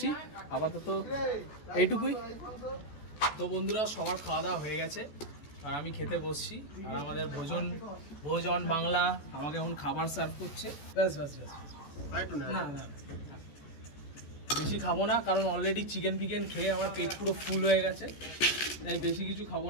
আপাতত এইটুকুই। তো বন্ধুরা সবার খাওয়া দাওয়া হয়ে গেছে আর আমি খেতে বসছি। আর আমাদের ভোজন বাংলা আমাকে এখন খাবার সার্ভ করছে। ব্যাস ব্যাস ব্যাস, না না বেশি খাবো না, কারণ অলরেডি চিকেন ফিকেন খেয়ে আমার পেট পুরো ফুল হয়ে গেছে, তাই বেশি কিছু খাবো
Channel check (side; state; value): right; late; 14 ms